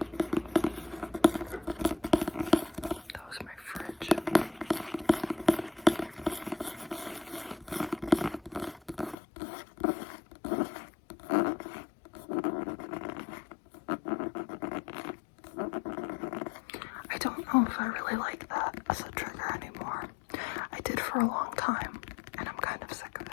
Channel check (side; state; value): right; drops out; at 9.2 s